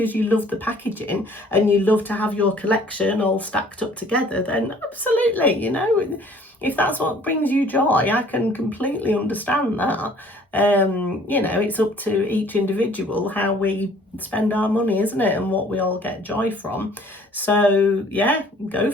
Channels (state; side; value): normal; both; correlation 0.55